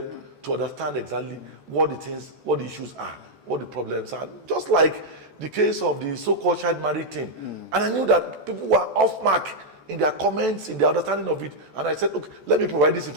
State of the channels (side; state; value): left; late; 14 ms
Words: to understand exactly what the issues are, what the problems are. Just like the case of the so-called child marriage thing. And I knew that people were off mark in their comments, in their understanding of it. And I said, okay, let me provide this